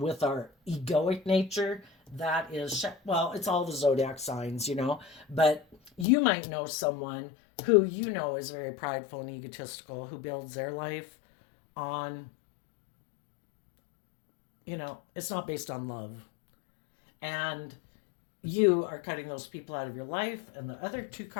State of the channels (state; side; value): drops out; right; at 6.1 s